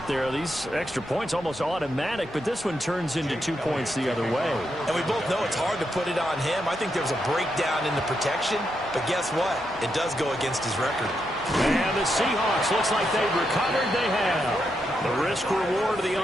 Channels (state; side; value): normal; both; correlation 0.83